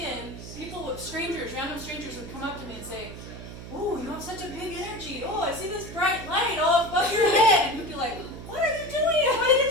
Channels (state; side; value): noise; right; hum, 12 dB below the sound